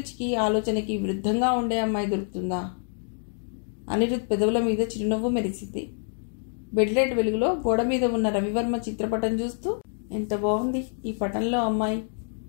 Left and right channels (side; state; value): right; silent; 60 dB below the other